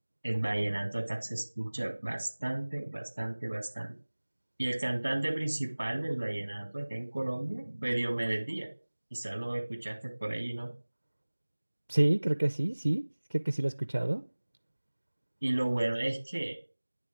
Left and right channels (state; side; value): inverted; both; correlation -1.00